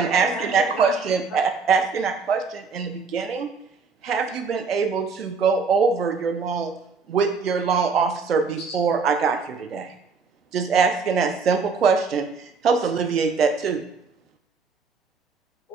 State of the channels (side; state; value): left; quieter; 5.0 dB